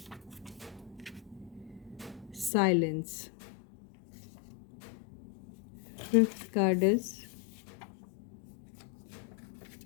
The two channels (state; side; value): drops out; right; at 2.5 s